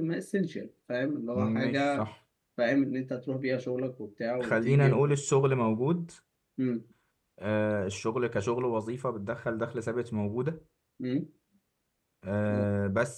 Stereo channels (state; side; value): identical; both; correlation 1.00